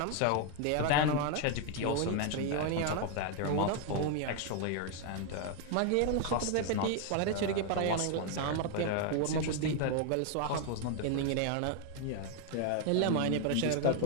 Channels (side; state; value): both; different; correlation 0.01